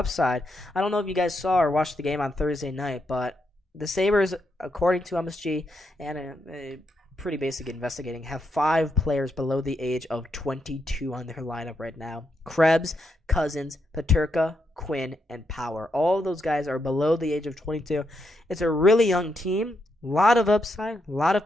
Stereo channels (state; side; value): normal; both; correlation 0.81